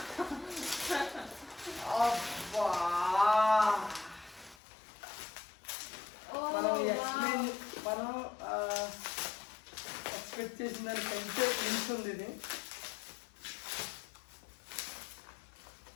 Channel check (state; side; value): drops out; right; at 4.5 s